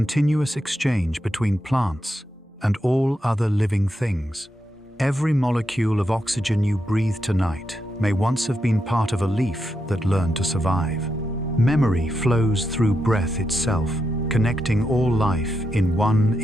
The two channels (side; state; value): both; normal; correlation 0.85